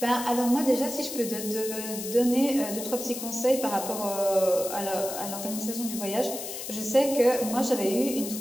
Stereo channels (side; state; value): left; noise; hiss, 7 dB below the sound